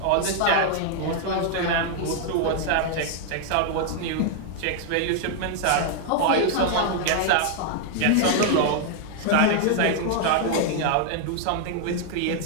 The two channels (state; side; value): different; both; correlation 0.00